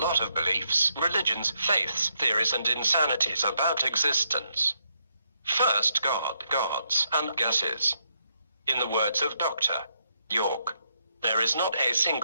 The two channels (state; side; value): inverted; both; correlation -0.78